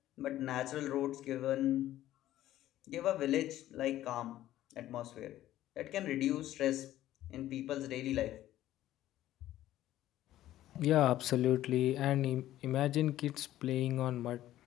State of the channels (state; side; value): quieter; right; 13.8 dB